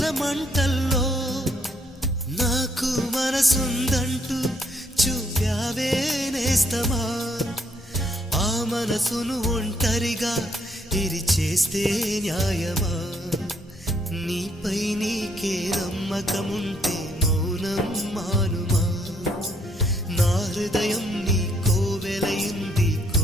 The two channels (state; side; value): normal; both; correlation 0.70